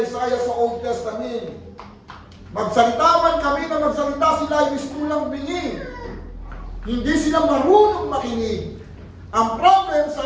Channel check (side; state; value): both; identical; correlation 1.00